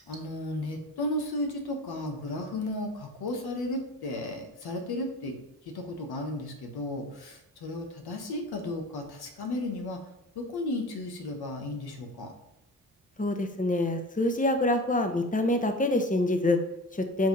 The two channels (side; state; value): both; normal; correlation 0.36